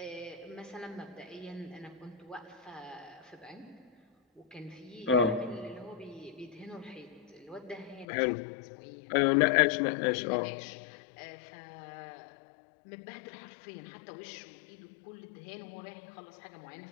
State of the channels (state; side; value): drops out; right; at 8.1 s